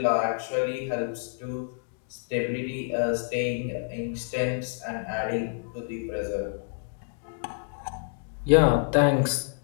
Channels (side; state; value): right; silent; digital silence